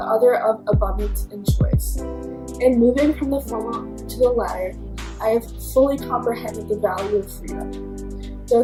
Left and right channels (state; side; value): identical; both; correlation 1.00